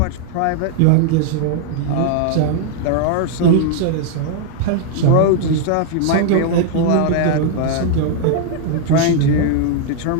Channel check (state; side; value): different; both; correlation -0.01